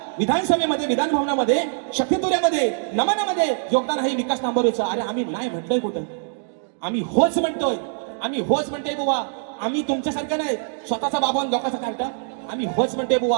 विधानसभेमध्ये, विधान भवनामध्ये, शक्तितुऱ्यामध्ये, नमनामध्ये योगदान आहे विकास नांबरेचं. अरे आम्ही नाही म्हटलंय कुठं, आम्ही होच म्हणतोय, आम्ही होच म्हणतोय बुवा. आम्ही तुमच्यासारखं नाही स्वतःचा बाबा लोकांचा कार्टा, आम्ही होच म्हणतोय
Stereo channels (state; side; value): silent; left; digital silence